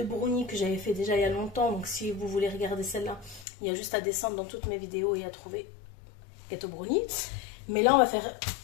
brownies que j'avais fait déjà il y a longtemps. Donc si vous voulez regarder celle-là, il y a juste à descendre dans toutes mes vidéos et à trouver gâteau brownie. Mais là on va faire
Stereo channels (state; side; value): drops out; right; at 3.5 s